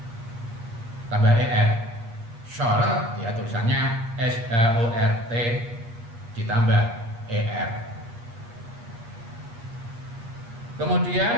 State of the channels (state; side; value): late; left; 8.6 ms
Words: Tambah er, short ya tulisannya short ditambah er.